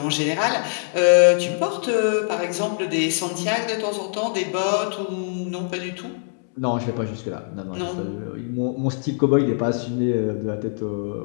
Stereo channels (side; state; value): right; silent; digital silence